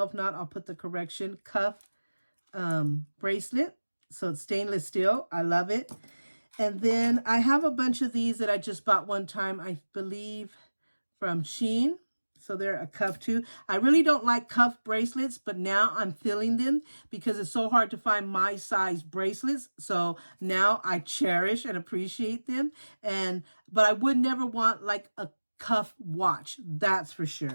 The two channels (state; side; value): inverted; both; correlation -1.00